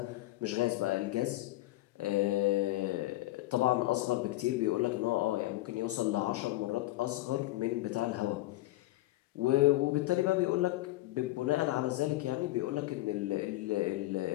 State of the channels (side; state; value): right; quieter; 17.7 dB